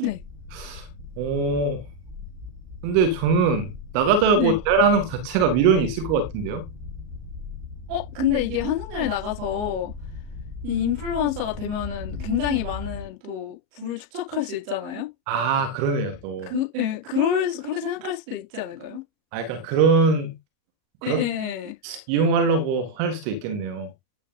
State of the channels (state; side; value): late; left; 38 ms